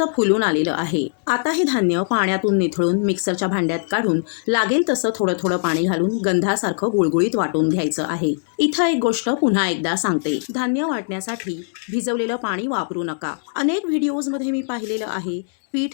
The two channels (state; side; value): silent; right; digital silence